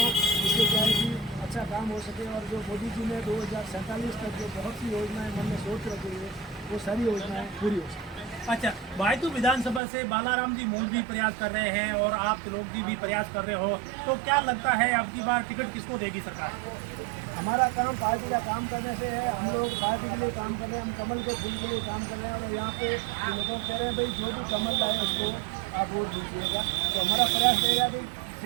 इससे क्या है कि अच्छा काम हो सके। और जो मोदी जी ने 2047 तक जो बहुत सी योजनाएं मन में सोच रखी है वो सारी योजनाएं पूरी हो सके। अच्छा, बायतू विधानसभा से बालाराम जी मौज भी प्रयास कर रहे हैं और आप त्रिलोक जी भी प्रयास कर रहे हो, तो क्या लगता है अब की बार टिकट किसको देगी सरकार? हमारा काम पार्टी का काम करने से है, हम लोग पार्टी के लिए काम कर रहे हैं, हम कमल के फूल के लिए काम कर रहे हैं और यहाँ पे लोगों कह रहे हैं भाई जो भी कमल लाए उसको आप वोट दीजिएगा। तो हमारा प्रयास रहेगा कि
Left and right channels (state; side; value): drops out; left; at 9.8 s